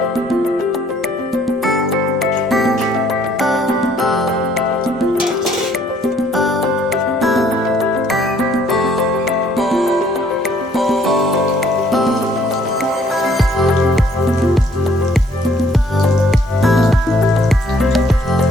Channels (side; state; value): both; normal; correlation 0.63